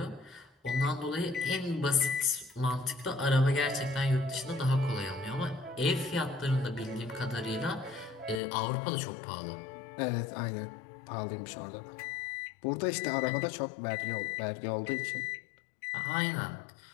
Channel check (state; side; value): drops out; right; at 8.4 s